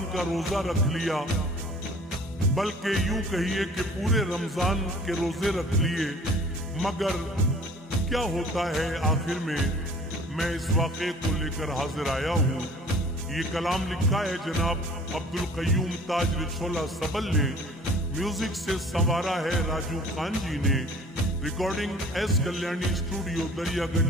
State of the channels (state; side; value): normal; both; correlation 0.49